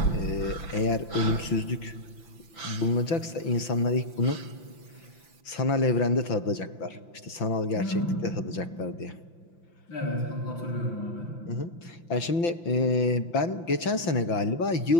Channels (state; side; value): late; right; 5.9 ms